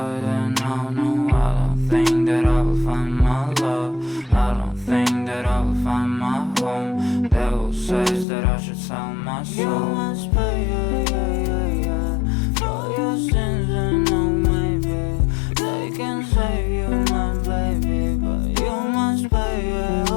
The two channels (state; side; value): drops out; right; at 8.2 s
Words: I don't think that I will find my love. I don't think that I will find my home. Devil says that I should sell my soul. You must pay, for your sins, and no, maybe they can save you, my baby, but you must pay,